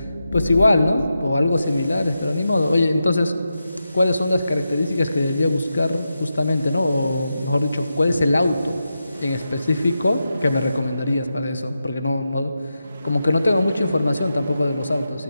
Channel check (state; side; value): inverted; both; correlation -0.89